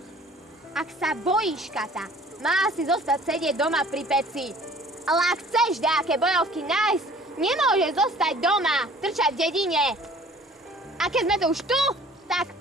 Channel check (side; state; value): both; normal; correlation 0.51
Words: Ak sa bojíš, Kata, má si zostať sedieť doma pri peci. Ale ak chceš nejaké bojovky nájsť, nemôžeš zostať doma, trčať v dedine. A keď sme tu už tu, tak